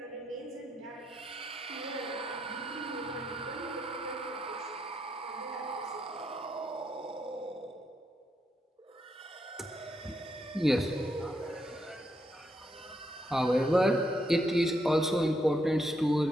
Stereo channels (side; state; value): both; normal; correlation 0.79